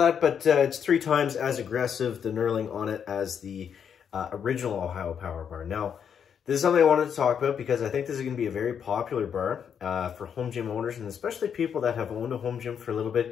but it's 3 times as aggressive, the knurling on it, as the original Ohio Power Bar. Now, this is something I wanted to talk about because I think this is going to be a very popular bar for home gym owners, and especially people that have owned a home gym for a little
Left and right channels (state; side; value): quieter; right; 7.7 dB